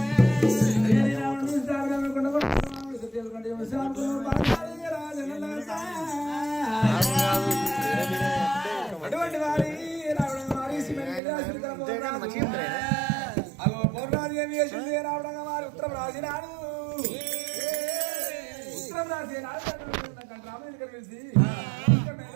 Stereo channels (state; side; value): drops out; left; at 11.2 s